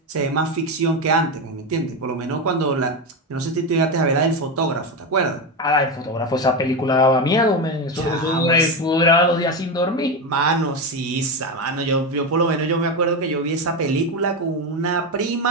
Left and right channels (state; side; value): normal; both; correlation 0.14